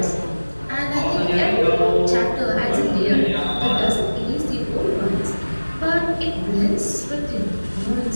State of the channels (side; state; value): both; inverted; correlation -1.00